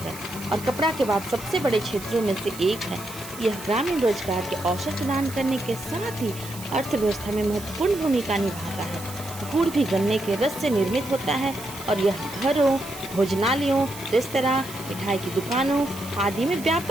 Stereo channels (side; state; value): right; noise; hiss, 14 dB below the sound